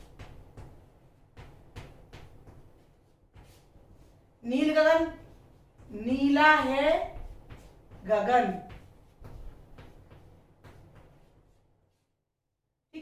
नील गगन, नीला है गगन।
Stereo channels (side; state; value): both; identical; correlation 1.00